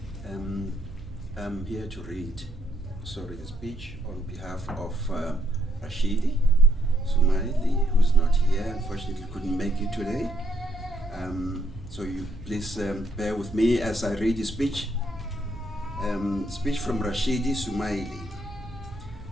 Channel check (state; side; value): noise; right; hum, 18 dB below the sound